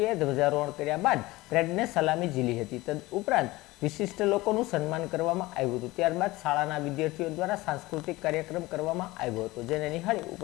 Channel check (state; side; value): quieter; right; 19.9 dB